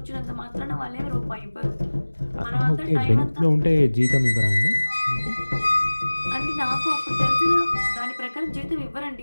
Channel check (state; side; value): inverted; both; correlation -1.00